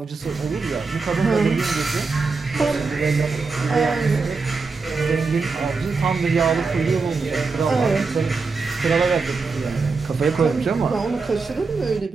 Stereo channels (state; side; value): quieter; left; 4.4 dB